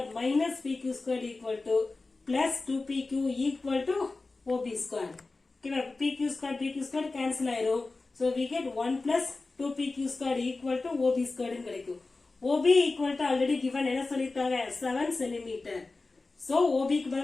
minus PQ square equal to plus 2PQ equal to OB square. ஓகேவா? PQ square cancel ஆயிரும். So we get 1 plus 2PQ square equal to OB square கிடைக்கும். OB equal to already given என்ன சொல்லிருக்காங்க? 7 centimeter. So OB க்கு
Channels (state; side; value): quieter; right; 3.5 dB